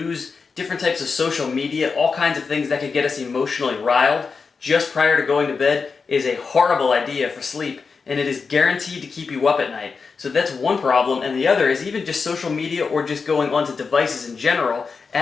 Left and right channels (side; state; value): right; quieter; 5.0 dB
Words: different types of social media, all kinds of things that could get us emotionally riled just prior to going to bed is a horrible idea for sleep. And it is guaranteed to keep you up at night. So that's one problem, and the other is even just social media or just going onto devices in general